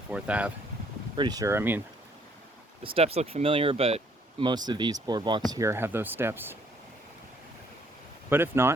Ave. Pretty sure. I mean, the steps look familiar, but most of these boardwalks here have those steps. But if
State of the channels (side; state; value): both; normal; correlation 0.65